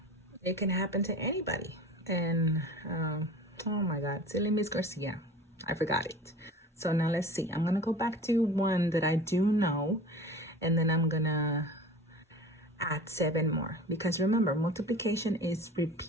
It can happen to anybody. And oh my God, silly Miss Garcia, I forgot it. So now let's see. I'm gonna go back to one that I do know, and then I'm gonna add 7 more, because remember, multiplication is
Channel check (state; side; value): normal; both; correlation 0.39